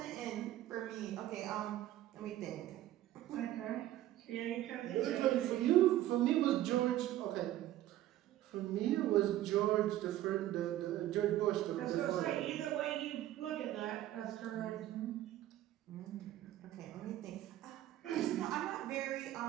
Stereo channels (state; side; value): quieter; left; 13.8 dB